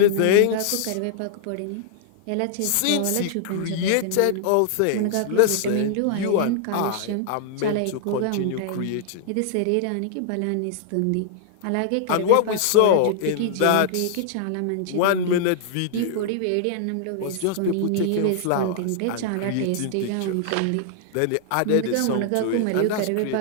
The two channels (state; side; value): different; both; correlation -0.01